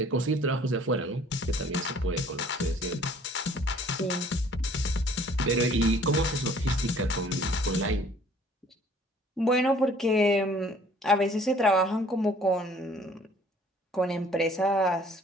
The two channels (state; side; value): normal; both; correlation 0.55